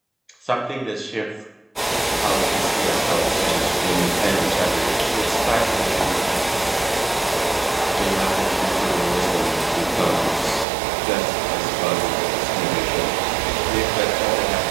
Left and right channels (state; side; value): drops out; left; at 10.7 s